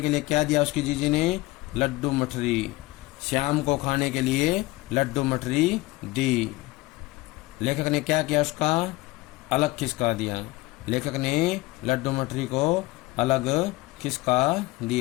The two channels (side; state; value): right; quieter; 20.3 dB